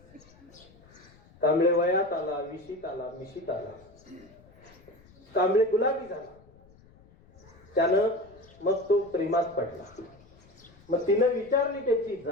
कांबळे वयात आला, विशीत आला, मिशीत आला. कांबळे गुलाबी झाला. त्यानं मग तो प्रेमात पडला. मग तिनं विचारली त्याची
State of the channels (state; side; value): noise; left; rumble, 26 dB below the sound